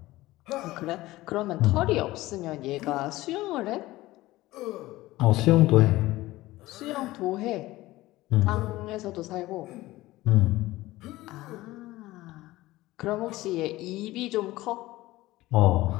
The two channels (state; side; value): quieter; right; 17.9 dB